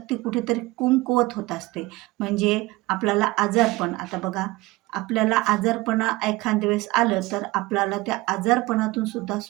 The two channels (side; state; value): left; quieter; 21.0 dB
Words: कुठेतरी कमकुवत होत असते. म्हणजे आपल्याला आजारपण आता बघा, आपल्याला आजारपणा एखाद्या वेळेस आलं, तर आपल्याला त्या आजारपणातून सुद्धा